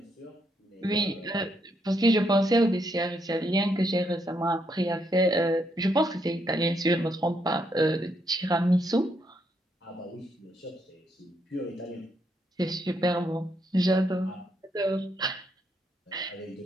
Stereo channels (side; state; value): both; normal; correlation 0.76